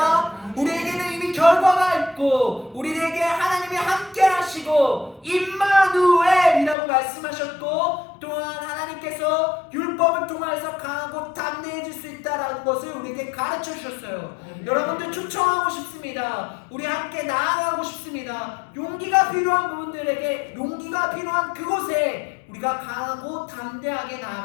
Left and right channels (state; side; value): drops out; right; at 6.8 s